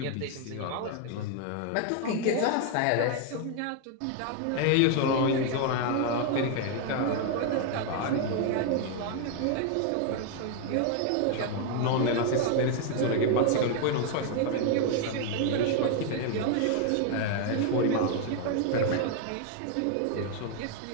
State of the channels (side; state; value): both; different; correlation 0.00